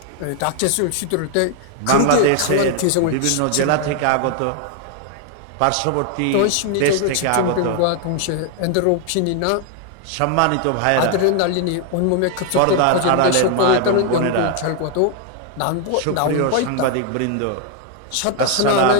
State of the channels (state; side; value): different; both; correlation 0.00